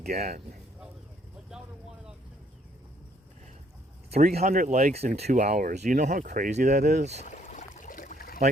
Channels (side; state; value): both; normal; correlation 0.66